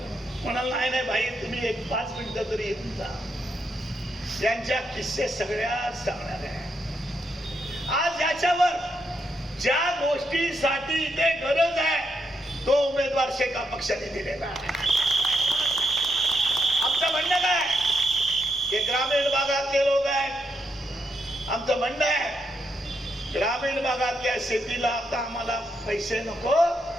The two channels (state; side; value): normal; both; correlation 0.80